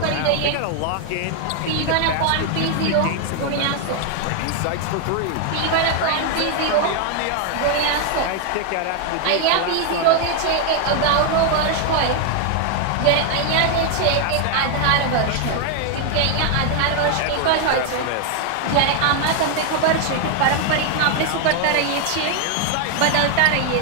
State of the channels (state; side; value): different; both; correlation 0.00